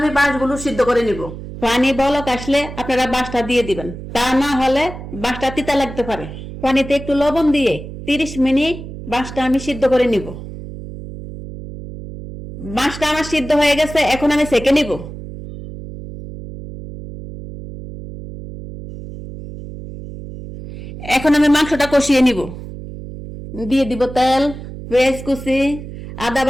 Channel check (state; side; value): noise; right; hum, 11 dB below the sound